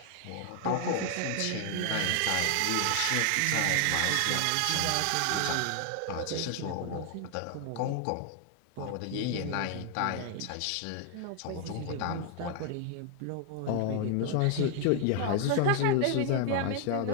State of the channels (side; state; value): both; different; correlation 0.00